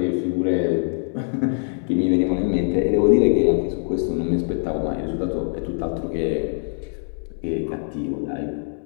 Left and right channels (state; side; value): silent; right; 63 dB below the other